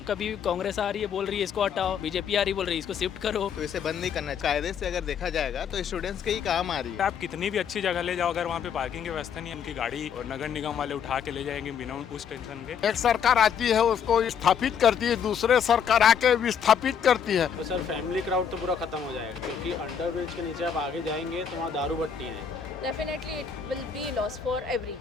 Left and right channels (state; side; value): quieter; right; 7.4 dB